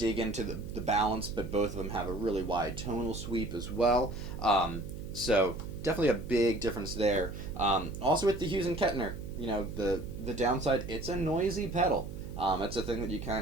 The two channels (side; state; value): right; noise; hum, 11 dB below the sound